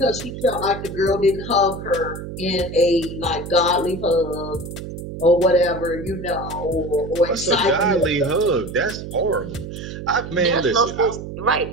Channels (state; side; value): noise; right; hum, 9 dB below the sound